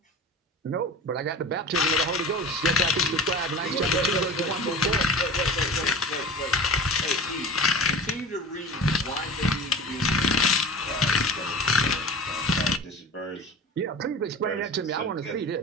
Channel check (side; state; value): both; normal; correlation 0.35